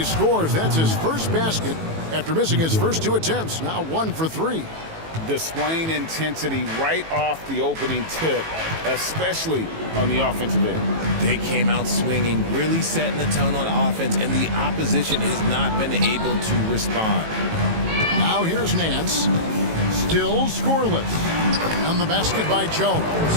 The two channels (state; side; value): late; left; 18 ms